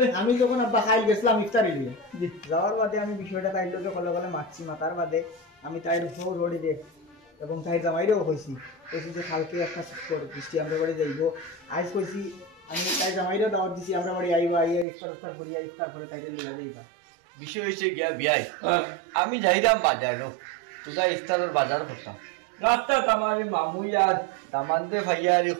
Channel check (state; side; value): drops out; left; at 14.9 s